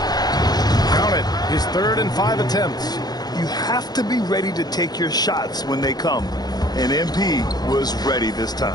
Count it, his 3rd and 5 attempts. You have to be ready to take your shots when they come. And MP was ready this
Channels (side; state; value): right; late; 0.19 ms